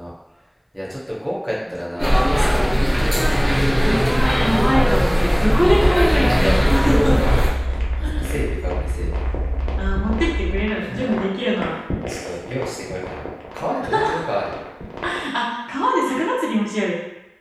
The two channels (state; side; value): identical; both; correlation 1.00